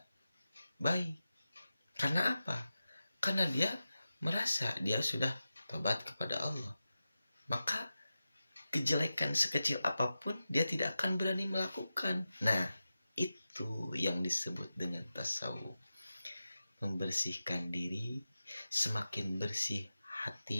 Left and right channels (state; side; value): inverted; both; correlation -0.93